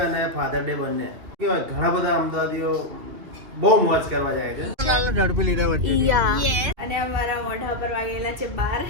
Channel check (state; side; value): late; left; 2.9 ms